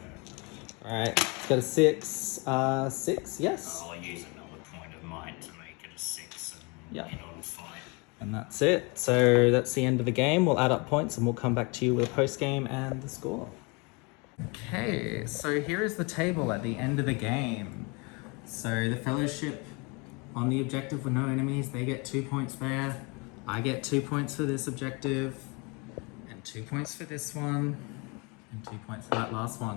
Alright, it's got a 6. 6, yes. I'll use another point of might to make it a 6 and Yep. get on fight. And that's it. So that's the end of the game. We'll add up points and we'll come back to you with a post game and the score. Okay, so here is the table at the end of the game. So the Fellowship on the objective with no enemies, they get 2 points there. I get 2 points for this objective, and 2 points for this one, and 2 points for that last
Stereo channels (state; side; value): quieter; right; 29.7 dB